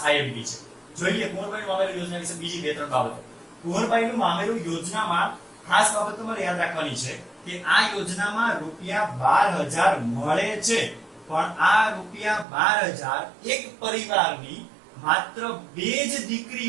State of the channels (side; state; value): left; drops out; at 12.5 s